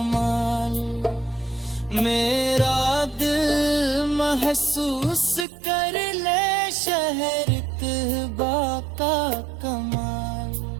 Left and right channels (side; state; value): left; drops out; at 5.5 s